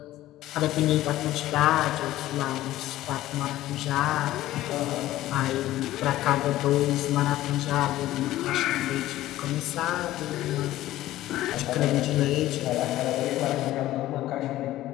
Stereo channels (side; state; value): right; quieter; 15.1 dB